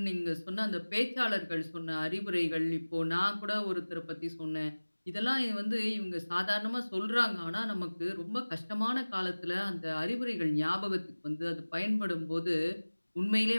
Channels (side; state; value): both; inverted; correlation -1.00